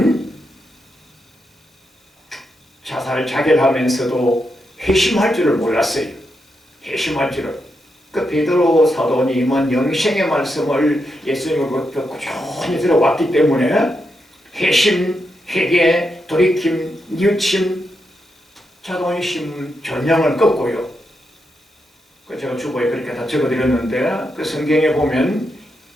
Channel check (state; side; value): normal; both; correlation 0.84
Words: 자살 자결하면서도 회심할 줄을 몰랐어요. 회심할 줄을. 그 베드로 사도님은 영생의 말씀을 예수님으로부터 꾸준히 들어왔기 때문에 회심, 회개, 돌이킴, 뉘우침, 자존심, 전형을 꺾고요. 제가 주보에 그렇게 다 적어드렸는데 그 성경에 보면